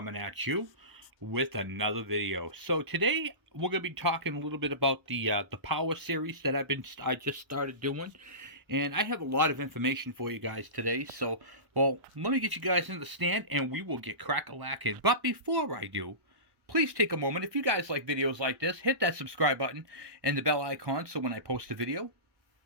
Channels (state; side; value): late; left; 1.0 ms